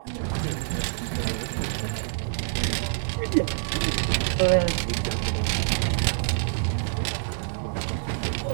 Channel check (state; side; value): silent; left; digital silence